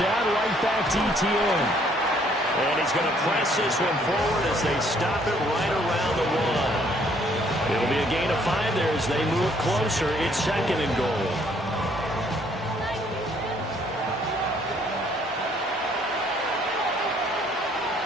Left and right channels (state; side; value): normal; both; correlation 0.64